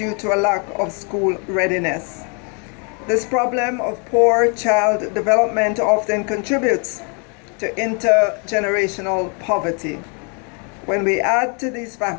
to a lack of school readiness. This problem of poor child development often contributes to intergenerational poverty. When we add to these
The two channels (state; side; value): quieter; right; 36.3 dB